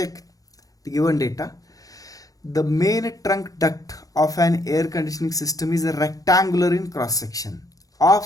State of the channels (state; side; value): late; right; 0.17 ms